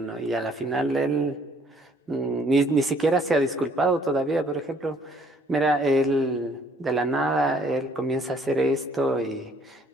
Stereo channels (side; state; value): both; normal; correlation 0.62